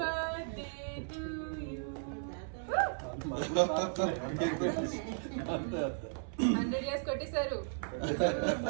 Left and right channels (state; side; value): silent; left; 54 dB below the other